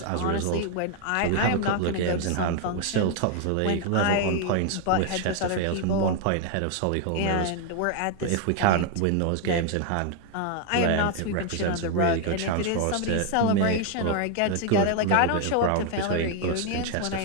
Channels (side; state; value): both; different; correlation 0.00